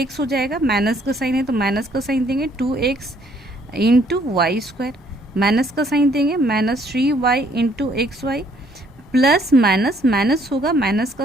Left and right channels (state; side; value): normal; both; correlation 0.64